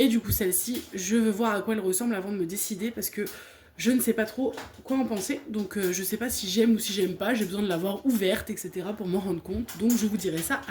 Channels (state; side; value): identical; both; correlation 1.00